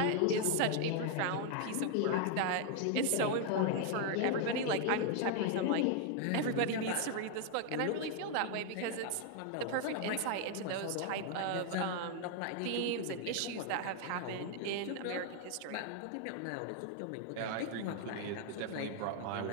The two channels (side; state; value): both; different; correlation 0.00